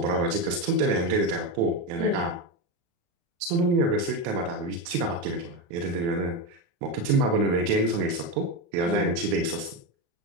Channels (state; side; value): late; left; 35 ms